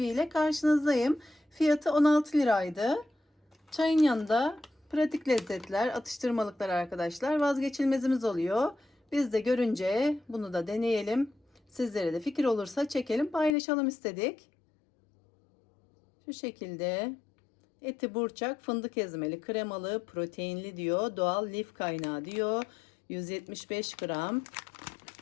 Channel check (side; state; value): right; drops out; at 13.6 s